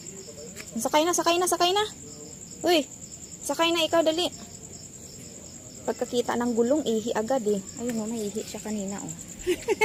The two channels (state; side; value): identical; both; correlation 1.00